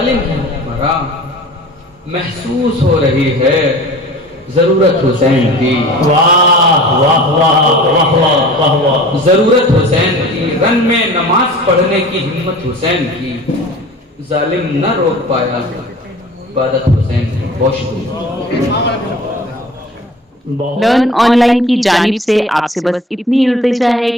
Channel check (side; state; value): both; normal; correlation 0.42